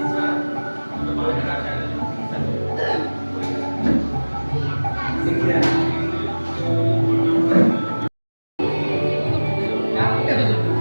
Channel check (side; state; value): both; inverted; correlation -1.00